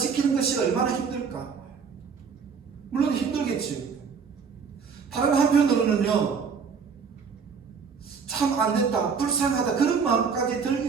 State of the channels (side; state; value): left; quieter; 5.9 dB